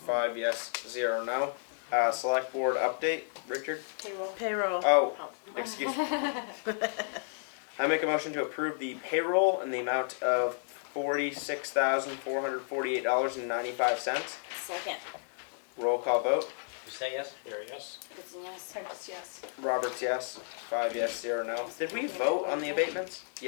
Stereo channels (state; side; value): silent; right; digital silence